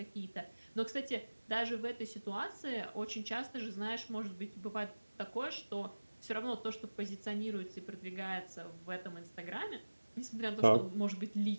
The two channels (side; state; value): both; inverted; correlation -1.00